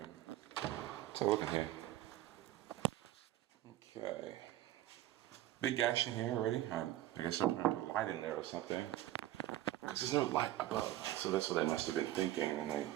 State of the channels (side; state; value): left; quieter; 14.2 dB